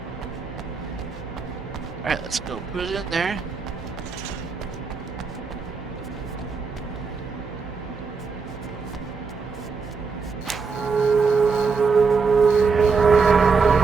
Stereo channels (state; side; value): quieter; left; 4.9 dB